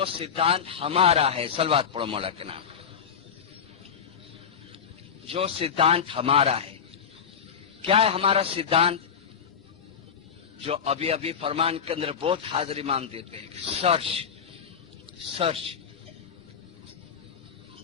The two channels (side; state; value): right; quieter; 7.1 dB